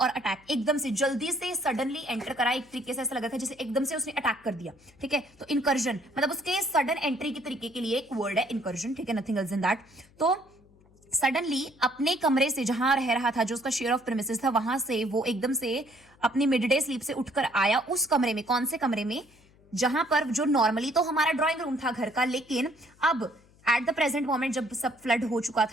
अटैक। एकदम से जल्दी से सडनली एंटर करा, एक तरीके से ऐसा लगा था जैसे एकदम से उसने अटैक कर दिया, ठीक है। तो इनकर्जन मतलब उसके सडन एंट्री के तरीके के लिए एक वर्ड है इनकर्जन, ठीक है, नथिंग एल्स इन दैट। तो सडनली अपने कमरे से जहां रह रहा था, जो उसका शेयर ऑफ प्रेमिसेस था, वहां से वो एकदम से अपनी मिड डे स्लीप से उठकर आया उस कमरे में। कौन से कमरे में? जहां पर जो नॉर्मली तो हमारा ड्राइंग रूम था घर का, लेकिन अब एट द प्रेजेंट मोमेंट जब सब फ्लड हो चुका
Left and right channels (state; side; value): noise; left; hum, 29 dB below the sound